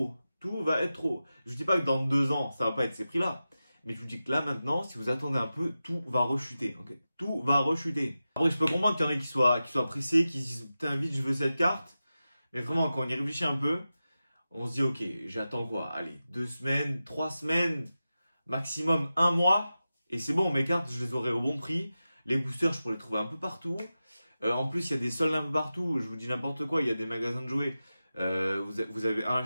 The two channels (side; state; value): both; inverted; correlation -0.93